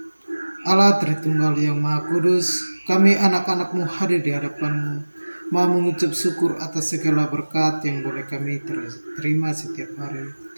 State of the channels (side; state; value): both; inverted; correlation -1.00